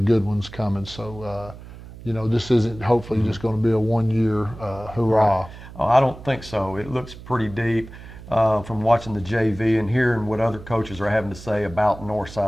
ones coming. So, this isn't hopefully just going to be a one-year hurrah. Right. Oh, I don't think so. It looks pretty deep from watching the JV and hearing what other coaches are having to say about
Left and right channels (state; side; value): noise; right; hum, 16 dB below the sound